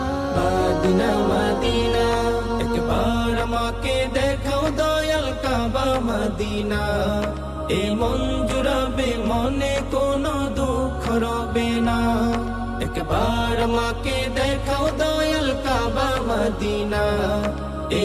Medina Medina. একবার আমাকে দেখাও দয়াল কাবা মদিনা, এ মন জুড়াবে মনে কোনো দুঃখ রবে না। একবার আমাকে দেখাও দয়াল কাবা মদিনা, এ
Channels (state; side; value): identical; both; correlation 1.00